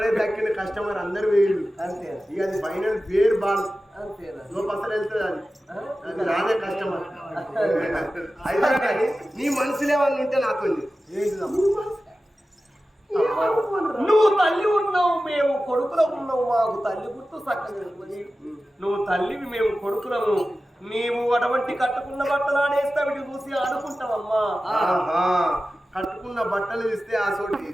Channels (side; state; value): both; normal; correlation 0.95